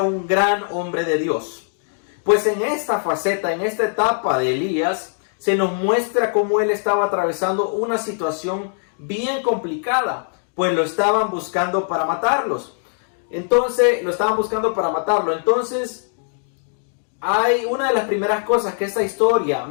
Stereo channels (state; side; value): silent; right; digital silence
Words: gran hombre de Dios. Pues en esta faceta, en esta etapa de Elías, se nos muestra cómo él estaba atravesando una situación bien complicada, pues lo estaban buscando para matarlos. Entonces, hay una de las primeras cosas que esta historia